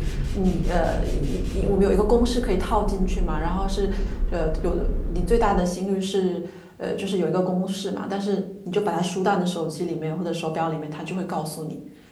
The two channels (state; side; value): identical; both; correlation 1.00